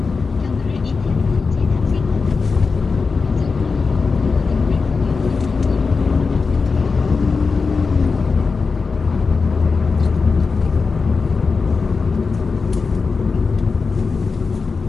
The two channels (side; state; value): right; quieter; 4.6 dB